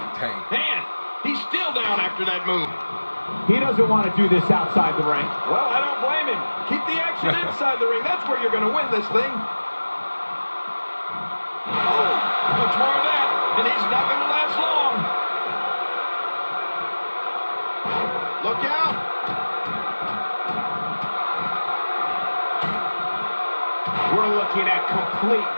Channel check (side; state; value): both; inverted; correlation -1.00